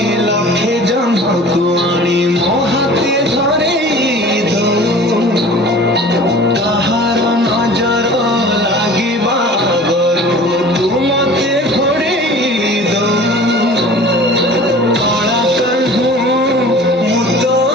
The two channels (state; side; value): normal; both; correlation 0.43